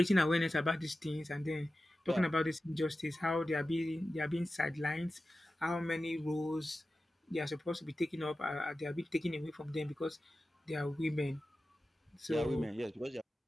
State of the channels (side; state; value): both; normal; correlation 0.94